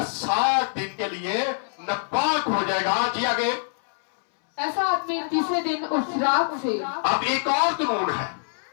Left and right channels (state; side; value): silent; right; 62 dB below the other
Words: 7 दिन के लिए नापाक हो जाएगा। जी आगे। ऐसा आदमी तीसरे दिन उस राख से, अब एक और कानून है